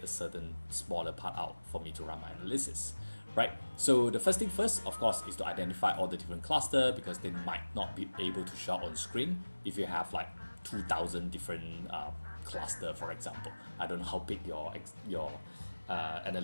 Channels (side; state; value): both; inverted; correlation -1.00